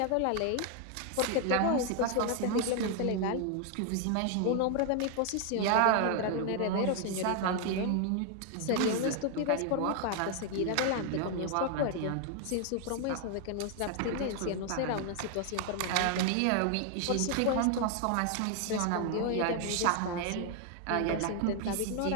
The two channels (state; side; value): different; both; correlation 0.00